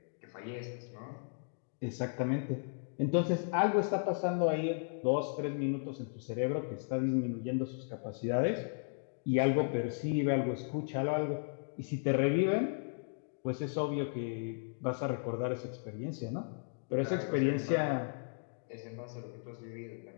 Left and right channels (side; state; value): right; silent; digital silence